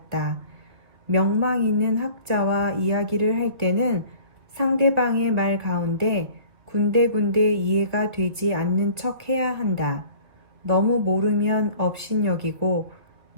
명망 있는 학자와 이야기를 할 때는 상대방의 말 가운데 군데군데 이해가 되지 않는 척 해야 한다. 너무 모르면 업신여기고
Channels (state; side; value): late; left; 2.5 ms